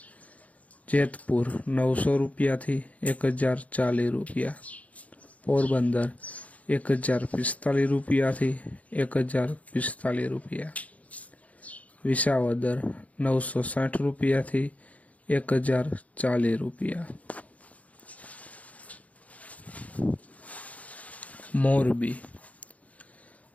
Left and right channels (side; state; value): right; late; 0.069 ms